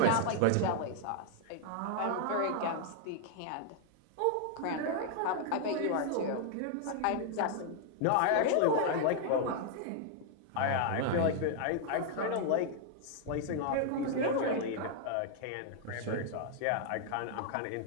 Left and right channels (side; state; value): both; different; correlation 0.00